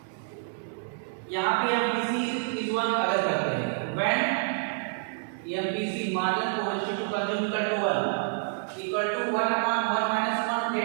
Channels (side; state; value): left; silent; digital silence